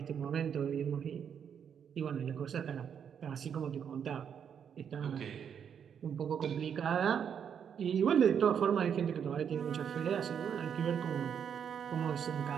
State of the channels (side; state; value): left; quieter; 7.8 dB